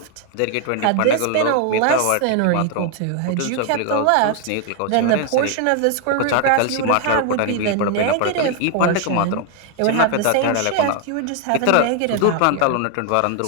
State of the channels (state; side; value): different; both; correlation 0.00